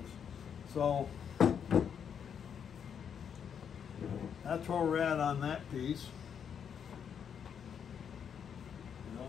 So that's where we're at on that piece. And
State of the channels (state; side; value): quieter; right; 7.7 dB